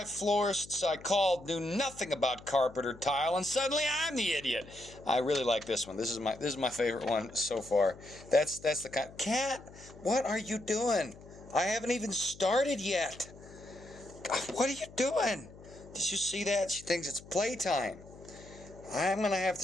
florists I called knew nothing about carpet or tile, and suddenly I'm the idiot. I really like this one. This is my favorite one so far. That's the kind. Cat, what are you doing? I haven't even started yet. What are you doing? Did you see that? She thinks it's playtime. I'm gonna have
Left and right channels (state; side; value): noise; left; hum, 19 dB below the sound